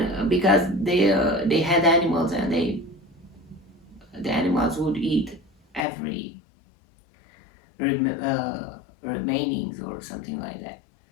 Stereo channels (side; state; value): right; drops out; at 5.8 s